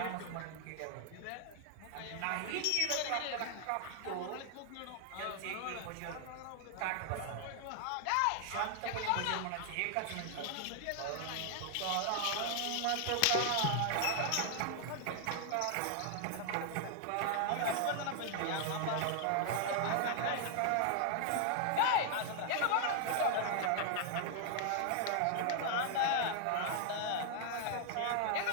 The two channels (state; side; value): different; both; correlation 0.00